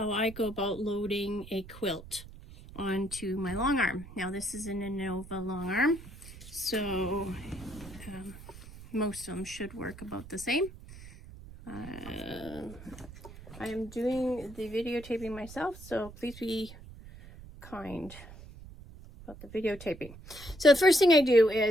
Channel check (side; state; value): right; noise; rumble, 16 dB below the sound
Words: I go about loading a quilt onto my long arm. Now this is an Innova long arm, so most of them should work about the same. I am doing the videotaping myself, so please be kind about the videotaping. So the first thing I do